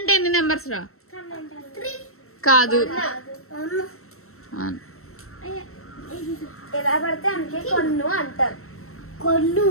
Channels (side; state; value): right; late; 0.63 ms